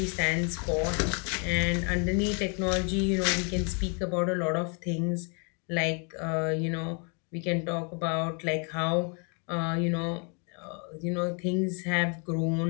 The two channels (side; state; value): right; quieter; 36.4 dB